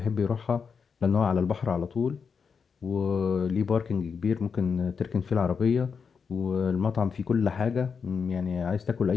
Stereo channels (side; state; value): right; quieter; 5.9 dB